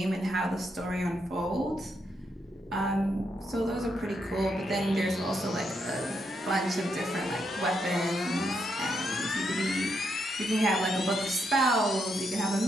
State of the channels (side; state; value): both; normal; correlation 0.79